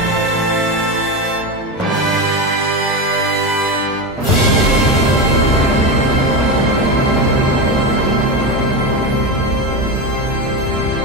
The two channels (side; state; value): both; normal; correlation 0.18